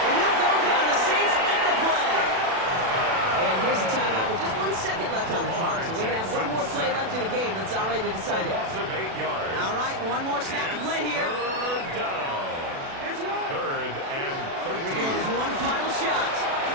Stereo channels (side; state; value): left; late; 36 ms